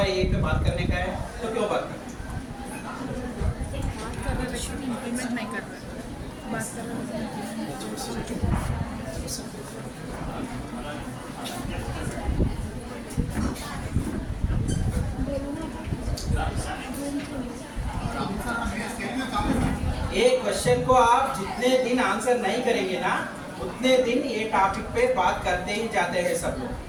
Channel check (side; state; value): both; identical; correlation 1.00